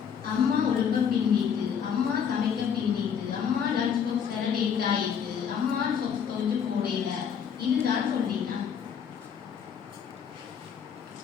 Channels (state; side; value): quieter; right; 7.5 dB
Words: அம்மா ஒழுக்க பின்னிட்டு, அம்மா சமைக்க பின்னிட்டு, அம்மா லஞ்ச் பாக்ஸ் லேட் ஆயிட்டு, அம்மா சொப்ஸ் துவைச்சு போடல, இதுதான் சொன்னீங்கன்னா